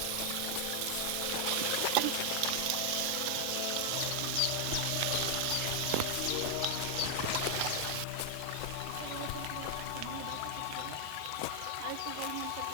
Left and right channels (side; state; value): both; different; correlation 0.00